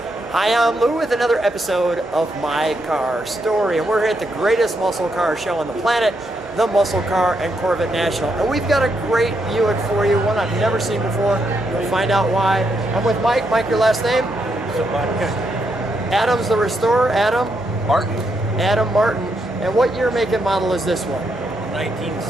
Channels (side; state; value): both; normal; correlation 0.79